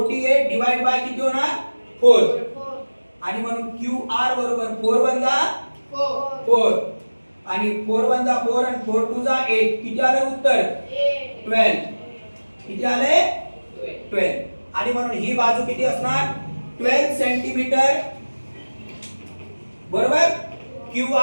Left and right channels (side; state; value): both; inverted; correlation -1.00